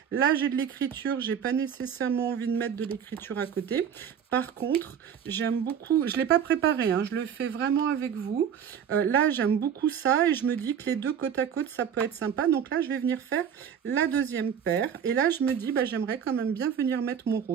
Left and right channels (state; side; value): quieter; left; 8.2 dB